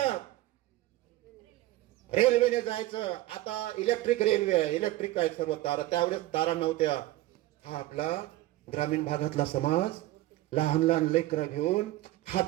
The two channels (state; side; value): quieter; left; 16.5 dB